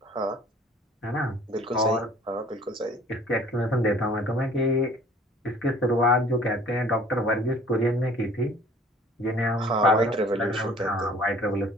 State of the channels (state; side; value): normal; both; correlation 0.51